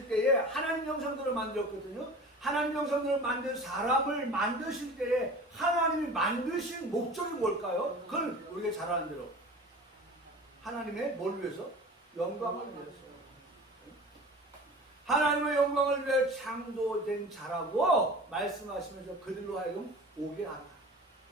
때에 하나님 형상대로 만들었거든요. 하나님 형상대로 만든 사람을 만드실 때에 하나님이 만드신 목적이 뭘까요? 그걸 우리가 잘 아는 대로 하나님의 뭘 위해서? 영광을 위해서. 하나님의 영광을 위해 창조된 자라고 말씀하시면서 그들로 하여금 오게 하라.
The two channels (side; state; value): both; normal; correlation 0.38